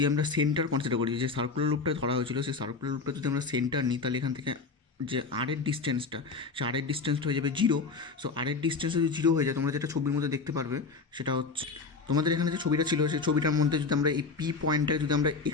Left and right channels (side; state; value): right; quieter; 4.4 dB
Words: আমরা সেন্টার কনসিডার করি, যে সার্কুলার লুপটা ধরা হয়েছিল সেই সার্কুলার লুপটা যদি আমরা সেন্টার নিই তাহলে এখান থেকে যে আরের ডিস্টেন্সটা, সে আরের ডিস্টেন্সটা হয়ে যাবে 0। সো আরের ডিস্টেন্স যদি 0 হয়ে যায়, তোমরা যেটা ছবির মধ্যে দেখতে পারবে সেটা হচ্ছে তোমাদের এখানে যে ছবিটা ছিল সেই ছবিটার মধ্যে যদি আমরা এই পি পয়েন্টটাকে যদি আমরা